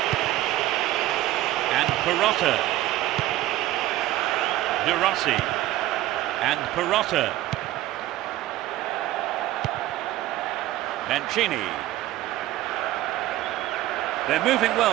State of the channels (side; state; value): left; quieter; 15.4 dB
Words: And Perotta. De Rossi. And Perotta. Mancini. They're moving